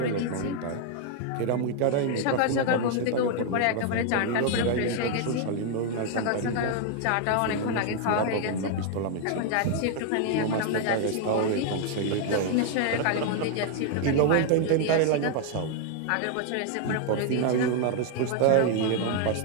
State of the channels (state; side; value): different; both; correlation 0.00